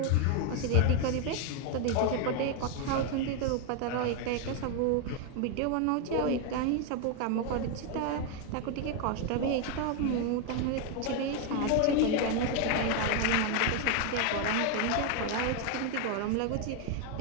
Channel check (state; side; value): different; both; correlation 0.01